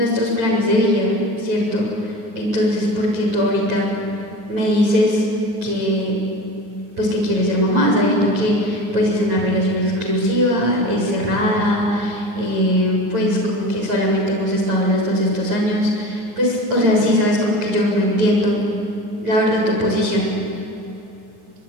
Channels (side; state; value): left; late; 9.6 ms